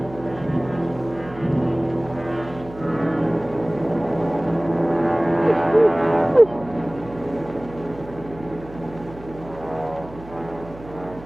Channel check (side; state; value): right; noise; hum, 17 dB below the sound